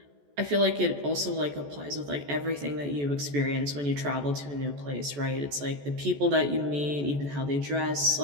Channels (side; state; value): left; late; 14 ms